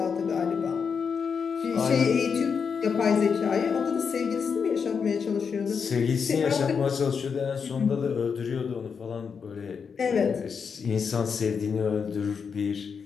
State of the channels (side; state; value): right; quieter; 6.1 dB